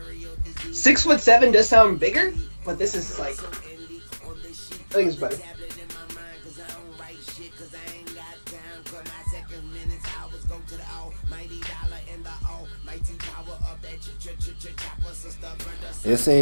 Six 6'7" does sound bigger, but this is like, I think it's better. They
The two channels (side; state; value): both; inverted; correlation -1.00